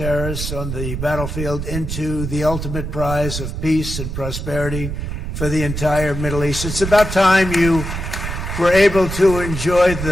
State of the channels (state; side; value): noise; right; rumble, 5 dB below the sound